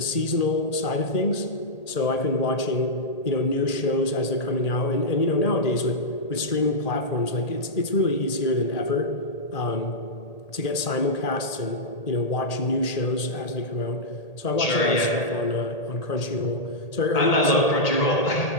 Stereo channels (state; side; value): late; right; 1.8 ms